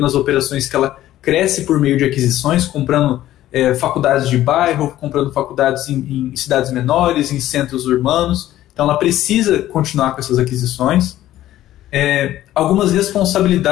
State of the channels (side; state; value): right; quieter; 13.8 dB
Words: nas operações que ela cresce por meio de aquisições, comprando faculdades de bairro, comprando faculdades em cidades menores, em centros urbanos. Então ela precisa continuar com essas aquisições. Algumas